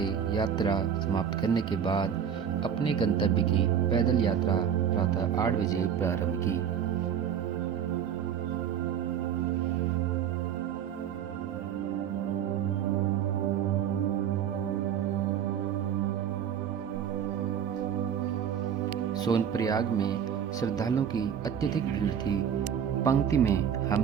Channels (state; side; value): quieter; left; 8.5 dB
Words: यात्रा समाप्त करने के बाद अपने गंतव्य की पैदल यात्रा प्रातः 8 बजे प्रारंभ की। सोनप्रयाग में श्रद्धालुओं की अत्यधिक भीड़ थी। पंक्ति में